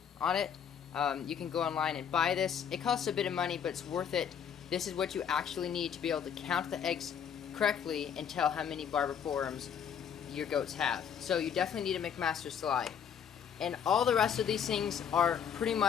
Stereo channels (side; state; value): right; quieter; 8.0 dB